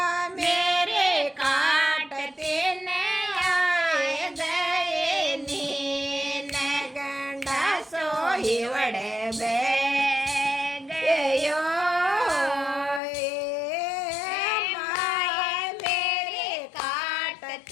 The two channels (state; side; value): drops out; right; at 13.0 s